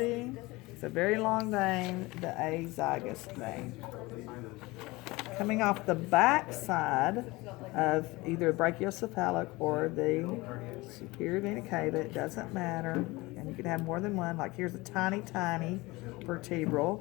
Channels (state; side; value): quieter; right; 22.0 dB